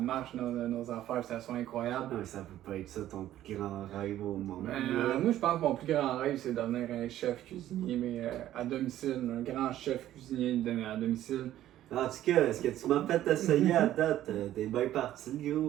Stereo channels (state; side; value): quieter; left; 13.0 dB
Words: dans nos affaires, que ça soit incroyable. Non, ça peut pas être ça ton plus grand rêve au monde. Moi, je pense que mon plus grand rêve, c'est devenir un chef cuisinier, mais à domicile, un grand chef cuisinier à domicile. En tout cas, est-ce que tu m'as fait essayer à date? T'es bien parti,